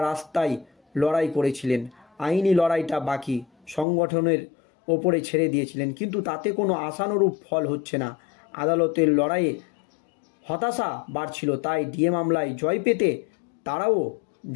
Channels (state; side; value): drops out; right; at 3.9 s